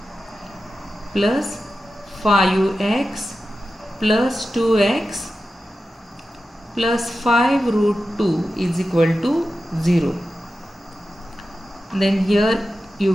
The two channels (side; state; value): both; normal; correlation 0.92